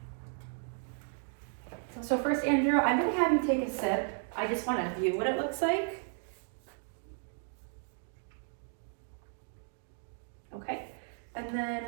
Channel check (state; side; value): silent; left; 55 dB below the other